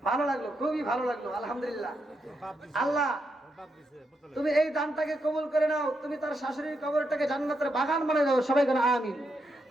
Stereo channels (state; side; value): normal; both; correlation 0.82